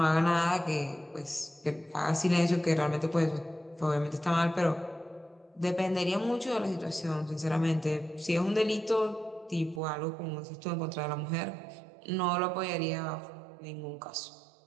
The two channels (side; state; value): left; drops out; at 9.8 s